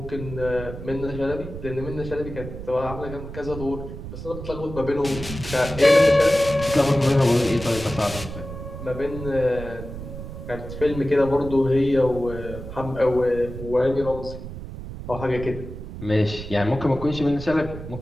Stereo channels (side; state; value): right; noise; rumble, 10 dB below the sound